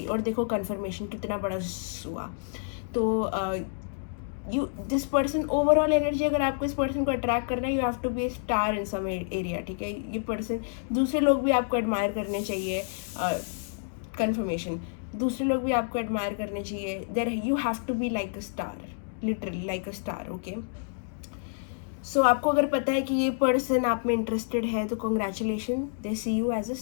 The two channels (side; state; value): right; silent; digital silence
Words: और देखो कन्फर्मेशन कितना बड़ा हुआ। तो दिस पर्सन, ओवरऑल एनर्जी अगर आपको इस पर्सन को अट्रैक्ट करना है, you have to be a star in some area, ठीक है। ये पर्सन, दूसरे लोग भी आपको एडमायर करने चाहिए। कन्फर्मेशन, दूसरे लोग भी आपको एडमायर करने चाहिए। There you have to be like a star, literally like a star, okay. So आपको अगर पता है कि ये पर्सन आप में इंटरेस्टेड है, तो congratulation, they see you as a